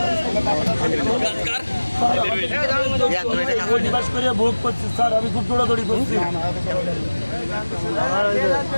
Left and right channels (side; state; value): both; inverted; correlation -1.00